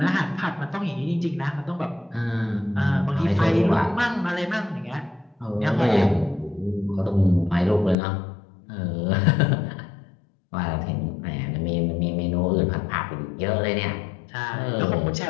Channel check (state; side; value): drops out; right; at 8.0 s